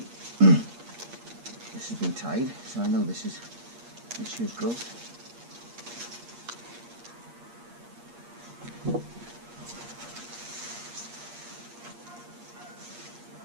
this has been tied, so I know this is this year's growth.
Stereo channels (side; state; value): left; late; 8.5 ms